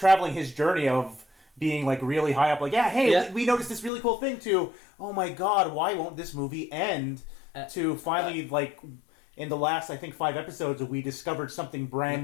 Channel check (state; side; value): drops out; right; at 3.9 s